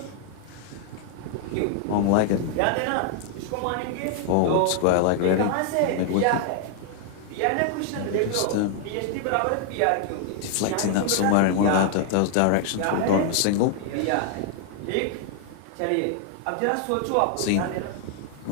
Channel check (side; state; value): both; different; correlation 0.00